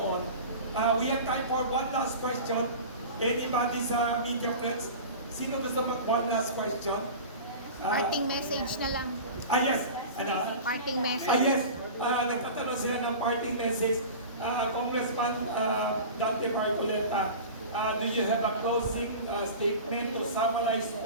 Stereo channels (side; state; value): both; inverted; correlation -0.34